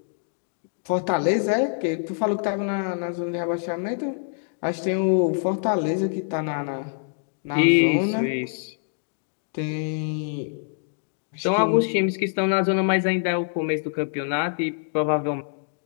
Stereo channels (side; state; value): right; silent; digital silence